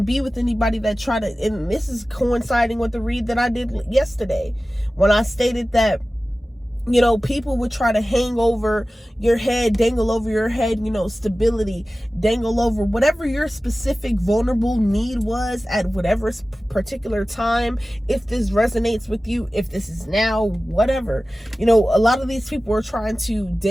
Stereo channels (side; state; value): both; normal; correlation 0.96